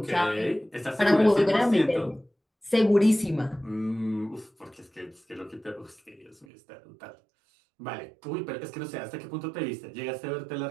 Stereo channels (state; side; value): drops out; left; at 6.5 s